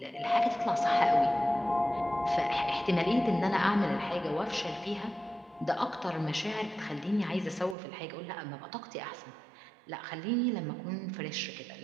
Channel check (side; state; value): left; drops out; at 7.8 s